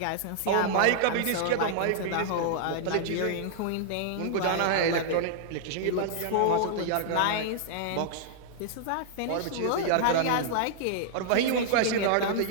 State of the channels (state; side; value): different; both; correlation -0.01